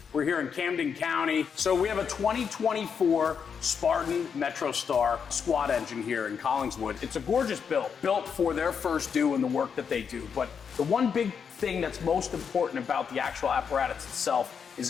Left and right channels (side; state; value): right; quieter; 6.7 dB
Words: We're here in Camden County. So we have a 2024 Spartan MetroStar squad engine here in Collingswood. It's a gorgeous built for their first due and the work that they do. But the one big thing that's most important about the actual apparatus itself is